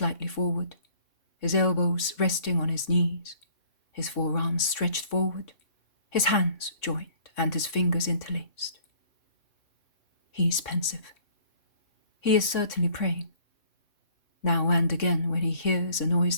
forward, his elbows resting on his knees, his forearms stretched forward, his hands joined and his fingers interlaced. He is pensive. He is certainly praying. Now and again, when he hears a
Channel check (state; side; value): late; right; 3.6 ms